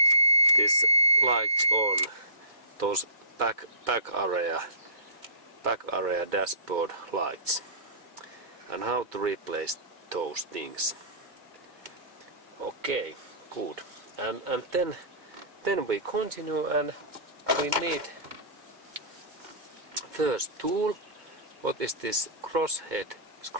lights on those back area dashboard lights and how to replace those things. Okay, good. And then we continue, and we need first tool. What is this crosshead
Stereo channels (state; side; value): late; left; 2.2 ms